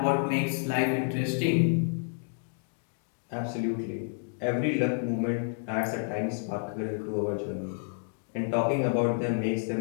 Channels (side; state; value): right; silent; 58 dB below the other